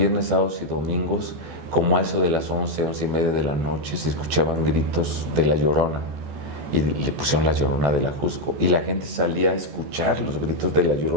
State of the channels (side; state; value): left; late; 14 ms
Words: sábados y domingos, como a eso de las 11, 11:30 de la noche, se escuchaban gritos de la Llorona. Y le pusieron la Llorona de la Jusco. Y la gente salía a escuchar los gritos de la